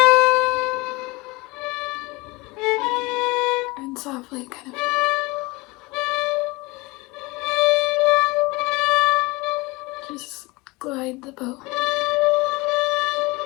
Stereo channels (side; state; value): right; quieter; 23.8 dB